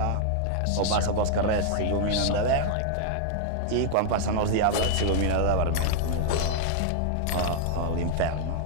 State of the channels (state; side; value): different; both; correlation -0.01